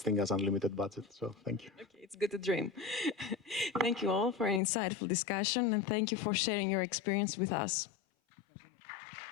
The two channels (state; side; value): drops out; right; at 4.6 s